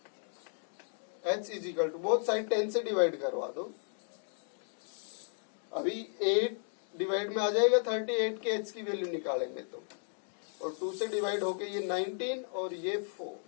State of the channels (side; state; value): right; silent; digital silence